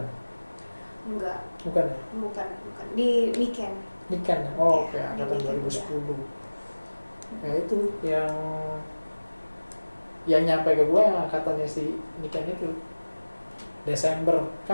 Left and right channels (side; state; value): both; inverted; correlation -1.00